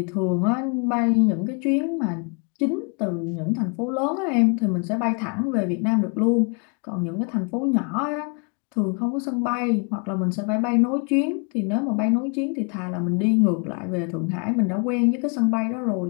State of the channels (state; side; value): quieter; right; 36.1 dB